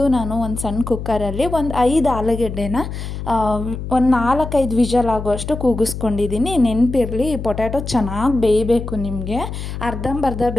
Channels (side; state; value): left; noise; hum, 7 dB below the sound